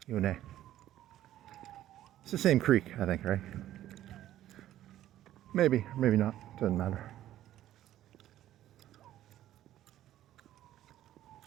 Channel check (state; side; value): quieter; left; 13.0 dB